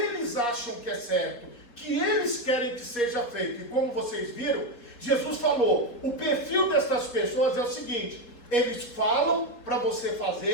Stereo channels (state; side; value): late; right; 4.3 ms